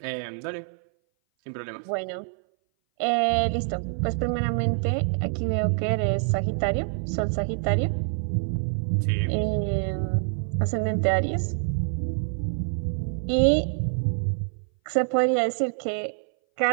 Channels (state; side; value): silent; left; 59 dB below the other